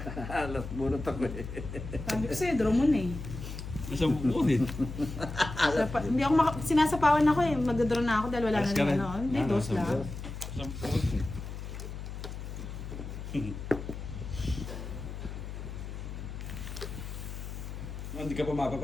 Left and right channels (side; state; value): left; noise; hum, 8 dB below the sound